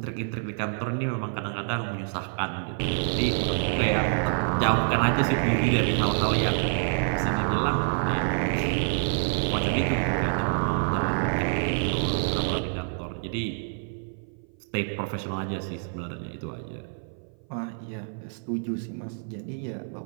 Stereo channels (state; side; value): silent; left; 57 dB below the other